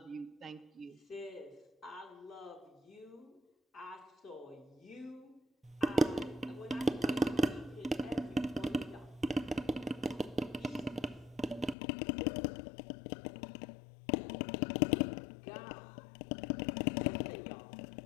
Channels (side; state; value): right; drops out; at 11.8 s